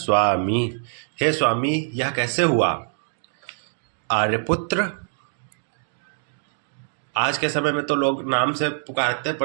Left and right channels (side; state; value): left; silent; digital silence